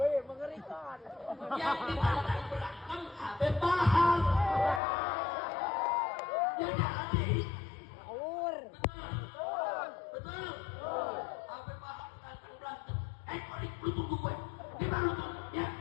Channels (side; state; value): right; drops out; at 4.8 s